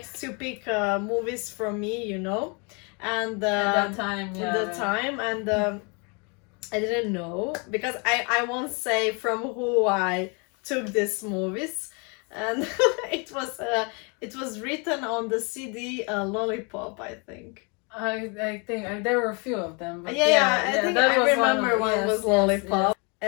to pick movies from me, you know, and At that time, yeah. at the time, and I didn't know, because I won't say from who I took these movies, and it was written on the CD Lollipop, I think. I think there were a few of them. But I think that I was remember one was Lollipop,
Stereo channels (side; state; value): right; quieter; 33.1 dB